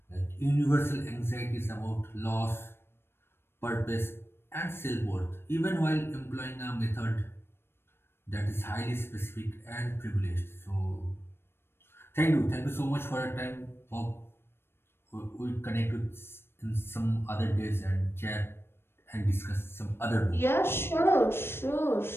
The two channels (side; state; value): right; late; 0.12 ms